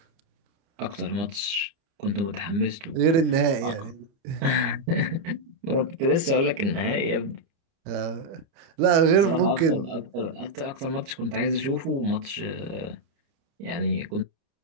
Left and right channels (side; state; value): left; late; 29 ms